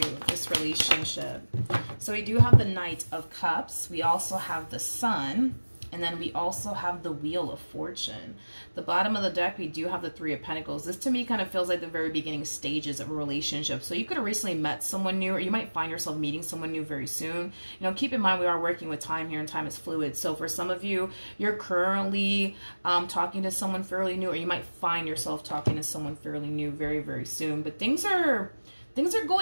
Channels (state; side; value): inverted; both; correlation -1.00